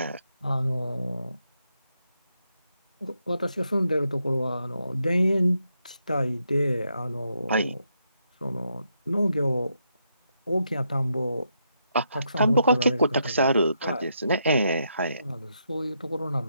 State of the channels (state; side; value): inverted; both; correlation -0.80